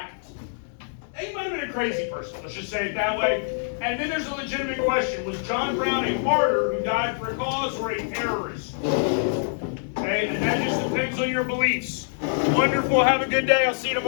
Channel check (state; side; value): silent; right; digital silence